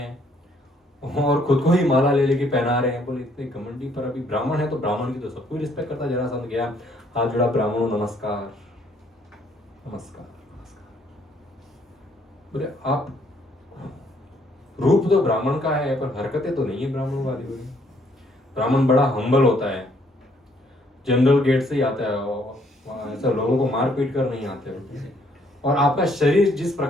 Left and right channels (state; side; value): normal; both; correlation 0.67